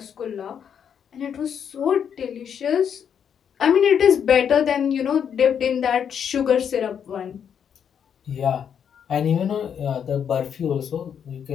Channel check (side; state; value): right; quieter; 8.0 dB